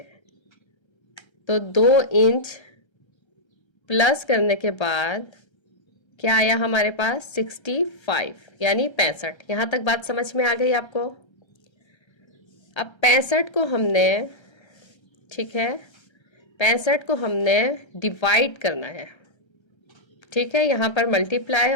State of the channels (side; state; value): right; late; 1.3 ms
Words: तो 2 इंच प्लस करने के बाद क्या आया हमारे पास, 65 यानी 65। यहाँ तक बात समझ में आ गई आपको। अब 65 को हमने, ठीक है, 65 को हमने डिवाइड करना है। ठीक है, यहाँ पर मल्टीप्लाई